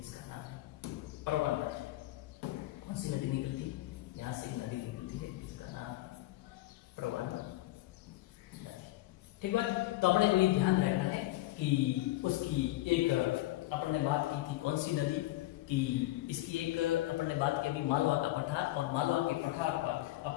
नाम है प्रवन नदी। कौन सी नदी निकलती है, यहाँ से एक नदी निकलती है जिसका नाम प्रवन नदी, ठीक बात। तो अपने को ये ध्यान रखना है कि उसकी एक अपन ने बात की थी कौन सी नदी की, इसकी एक अपन ने बात की अभी मालवा का पठार, और मालवा के पठार पर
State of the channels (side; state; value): right; quieter; 17.2 dB